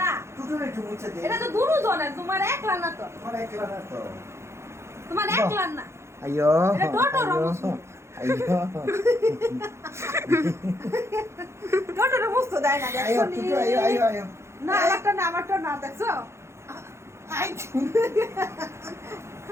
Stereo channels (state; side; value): late; left; 0.13 ms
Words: না। টুটুর একটু মুছে দে। এটা তো দুজনের, তোমার একলা না তো। তোমার একলা না তো। তোমার একলা না। আইয়ো এটা টোটোর মুছবো। আইয়ো টোটোর মুছতে দেয় না, আইয়ো দেখছো নি? টুটু আইয়ো আইয়ো আইয়ো না, আমারটা না, আমারটা না, দেখছো? আই